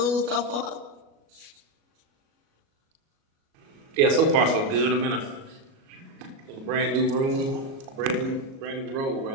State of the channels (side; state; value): left; late; 37 ms